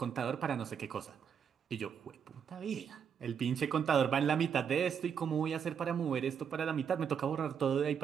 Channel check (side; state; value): left; quieter; 7.5 dB